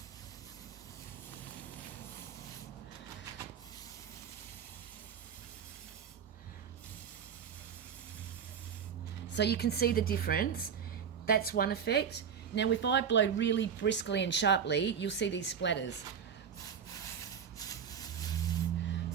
So you can see the difference. That's one effect. Now if I blow really briskly and sharply, you'll see these splatters.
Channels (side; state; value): left; quieter; 7.4 dB